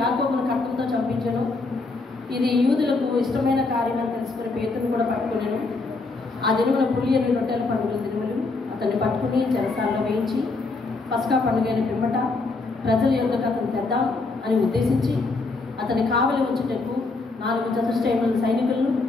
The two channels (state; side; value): quieter; right; 3.7 dB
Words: యాకోబును ఖడ్గంతో చంపించను. ఇది యూదులకు ఇష్టమైన కార్యం అని తెలుసుకుని పేతురును కూడా పట్టుకున్నాను. ఆ దినమున పులియని రొట్టెల పండుగల దినములు అతన్ని పట్టుకుని చెరసాల్లో వేయించి పస్కా పండుగ అయిన పిమ్మట ప్రజల యొద్దకు అతను తెద్దాం అని ఉద్దేశించి అతని కావలి ఉంచుటకు 4 చతుష్టయముల సైనికులను